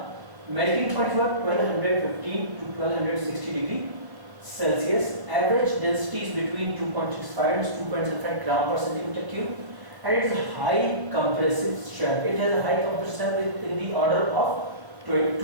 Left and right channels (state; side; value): late; left; 1.0 ms